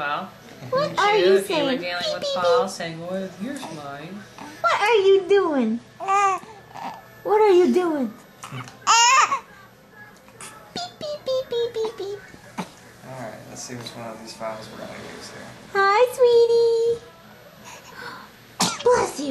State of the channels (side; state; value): both; identical; correlation 1.00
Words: What are you if you were saying? dealing Beep, with beep, Paul beep. saying, well, here's mine. What are you doing? What are you doing? Beep, beep, beep, beep, beep, beep. Alright, let's see which one of these files we're going to use here. Hi, sweetie. Bless